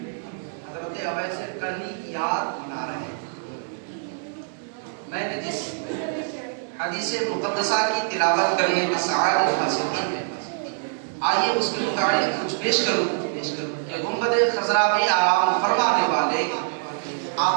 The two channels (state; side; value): silent; left; digital silence